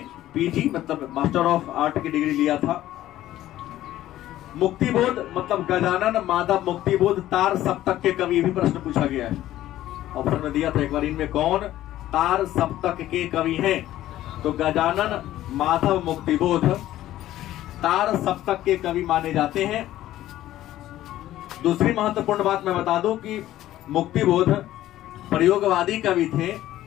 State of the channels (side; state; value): right; quieter; 14.0 dB